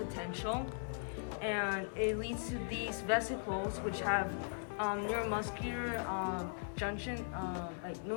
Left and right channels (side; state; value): right; silent; digital silence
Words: and it leads to these vesicles, which have neuromuscular junction, like